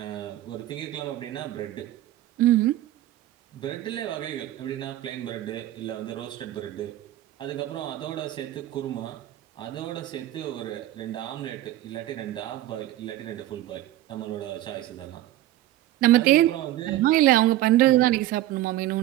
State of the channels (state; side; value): quieter; left; 14.8 dB